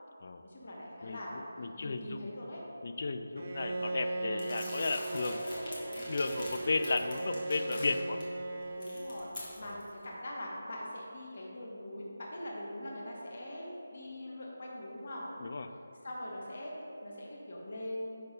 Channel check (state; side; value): inverted; both; correlation -0.93